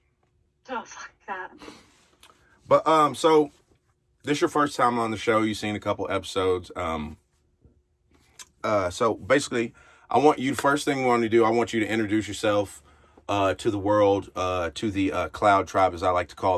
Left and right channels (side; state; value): both; identical; correlation 1.00